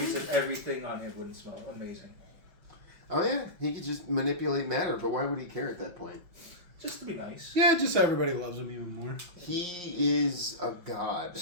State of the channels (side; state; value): left; late; 5.6 ms